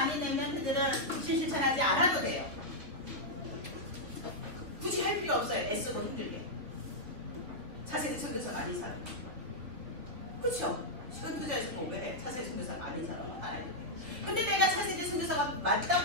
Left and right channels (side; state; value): left; late; 3.0 ms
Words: 아닌 랩런트들은 미션 실천하지 않아도 돼요. 굳이 할 필요 없어요. 애쓰고 힘들게. 차세대 선교사가 아닌 사람. 그렇죠? 시간 투자해서 뭐 왜 해? 차세대 선교사가 아닌 사람은 알아야 돼요. 근데 내가 차세대 선교사가